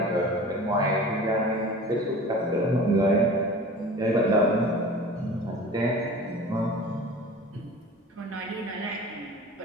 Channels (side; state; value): both; normal; correlation 0.39